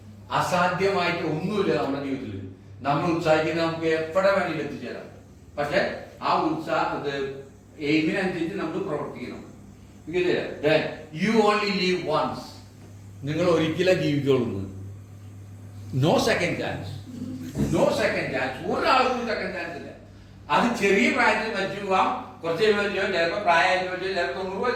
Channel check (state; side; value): identical; both; correlation 1.00